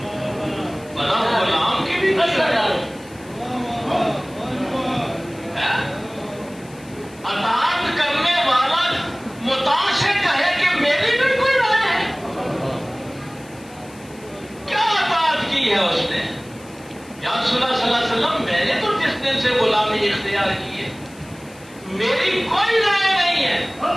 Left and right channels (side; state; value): left; noise; hiss, 24 dB below the sound